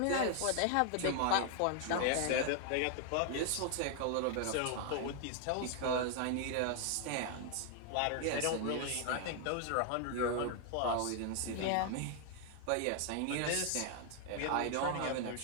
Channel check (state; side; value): different; both; correlation 0.00